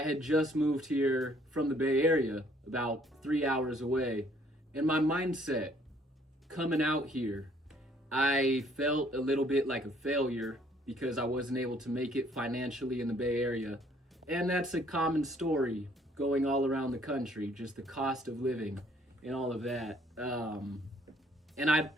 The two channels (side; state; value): both; normal; correlation 0.63